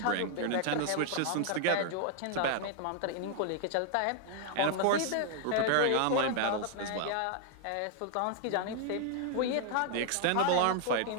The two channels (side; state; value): both; different; correlation 0.00